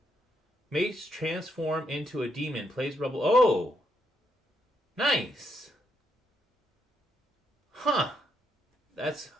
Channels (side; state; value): both; normal; correlation 0.77